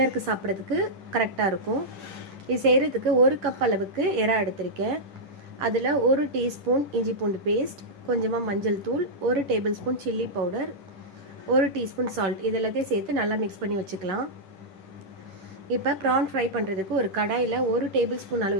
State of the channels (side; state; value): left; late; 10 ms